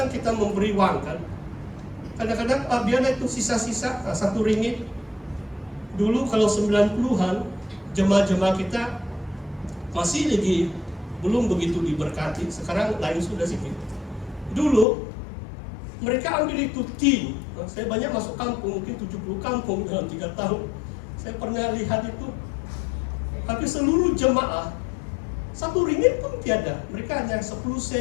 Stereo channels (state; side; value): drops out; right; at 14.9 s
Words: kita memberi wang kan. Kadang-kadang biarlah itu sisa-sisa RM1. Dulu kalau 90-an jemaah-jemaah kita masih lagi belum begitu diberkati. Sekarang lain sudah sedikit. Dulu mereka ambil itu tin. Saya banyak masuk kampung, mungkin 70 kampung dalam 3 tahun. Saya pernah lihat itu. Hampir seluruh jemaah RM1 pun tiada. Mereka hanya 10